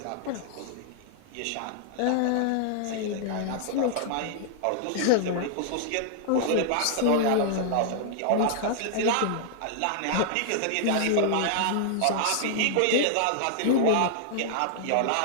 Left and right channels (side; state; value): both; different; correlation -0.01